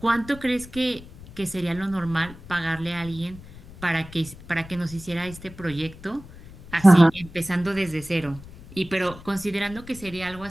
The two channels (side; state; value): left; noise; rumble, 18 dB below the sound